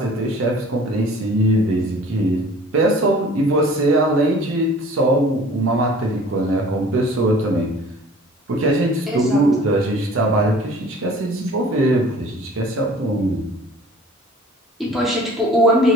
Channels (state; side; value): normal; both; correlation 0.48